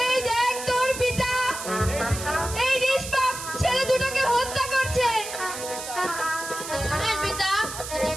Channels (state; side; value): noise; right; hiss, 8 dB below the sound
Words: দেখ তোর পিতা এই নিষ্পাপ ছেলে দুটোকে হত্যা করছে। আরে পিতা,